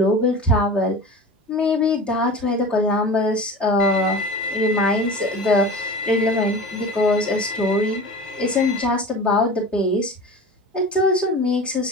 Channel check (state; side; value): normal; both; correlation 0.35